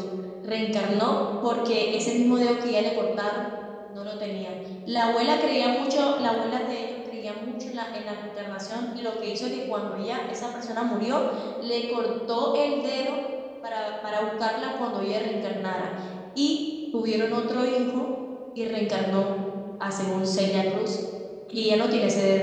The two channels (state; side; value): identical; both; correlation 1.00